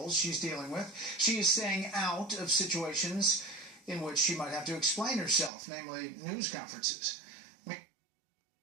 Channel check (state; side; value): drops out; left; at 5.5 s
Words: she's dealing with. She is staying out of situations in which she might have to explain herself, namely news conferences.